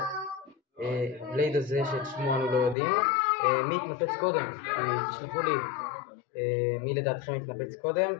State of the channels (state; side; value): drops out; right; at 2.8 s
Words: בלייד הזה שאת שמו אנו לא יודעים, מי התנפץ קודם. תשלחו לי מי לדעתכם התנפץ קודם,